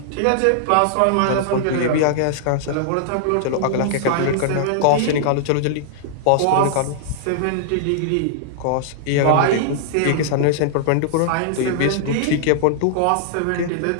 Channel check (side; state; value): both; different; correlation -0.01